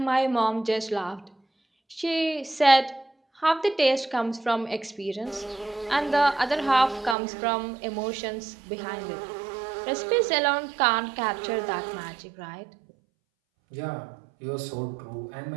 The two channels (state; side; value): drops out; left; at 7.2 s